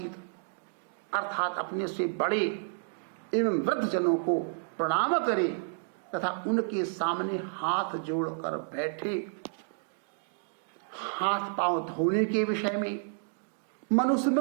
अर्थात अपने से बड़े एवं वृद्ध जनों को प्रणाम करे तथा उनके सामने हाथ जोड़कर बैठे। हाथ पांव धोने के विषय में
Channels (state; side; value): silent; left; digital silence